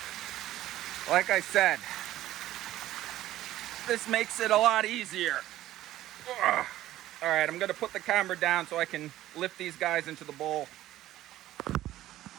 Like I said, this makes it a lot easier. Ugh. All right, I'm gonna put the camera down so I can lift these guys into the bowl.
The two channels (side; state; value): left; quieter; 14.3 dB